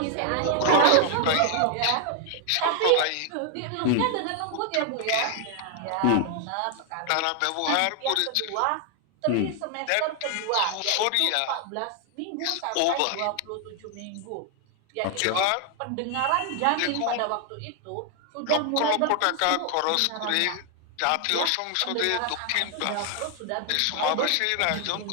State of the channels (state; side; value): different; both; correlation 0.00